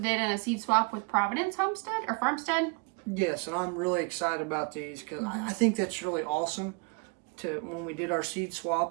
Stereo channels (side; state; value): left; quieter; 33.6 dB